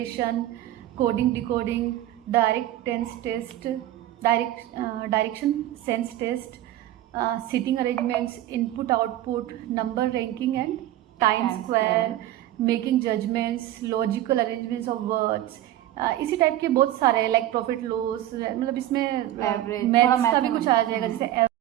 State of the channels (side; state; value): left; quieter; 13.6 dB